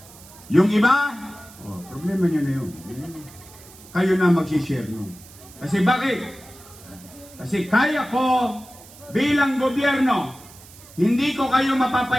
Yung iba, problema nyo na yun. Kayo na mag-share nun. Kasi bakit? Kasi kaya ko bilang gobyerno, hindi ko kayo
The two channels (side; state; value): right; noise; hiss, 21 dB below the sound